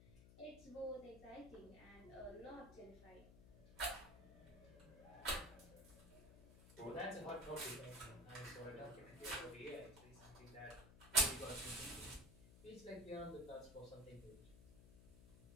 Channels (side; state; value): left; noise; hum, 17 dB below the sound